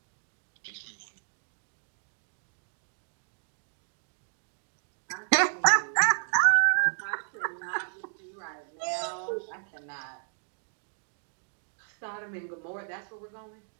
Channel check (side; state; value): left; silent; digital silence